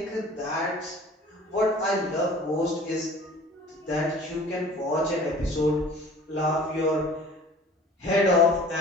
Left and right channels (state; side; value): normal; both; correlation 0.46